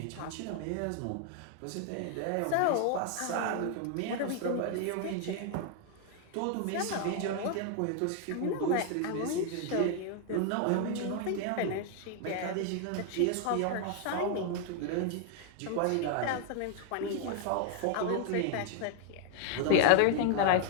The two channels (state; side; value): different; both; correlation 0.00